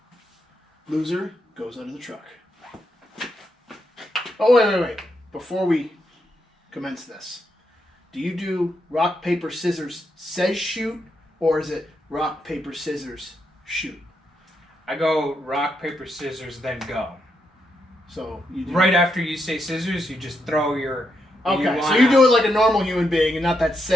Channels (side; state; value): both; normal; correlation 0.81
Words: Loser goes under the truck. Oh, wait. Before we commence this, do you do rock, paper, scissors, says shoot, or is it rock, paper, scissors, shoot? I go rock, paper, scissors, then go. So you do... Right after you say scissors, you just throw your... Okay, so you do it like a normal human being and not that